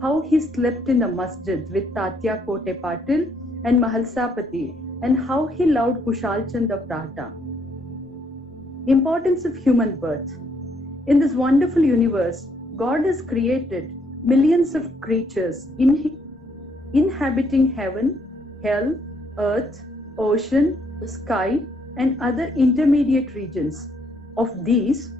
how he slept in the masjid with Tatya Kote Patil and Mahalsapati, and how he loved Kushal Chand of Rahta. Importance of human birth. In this wonderful universe, God has created millions of creatures inhabiting heaven, hell, earth, ocean, sky, and other intermediate regions. Of these,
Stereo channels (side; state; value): both; normal; correlation 0.71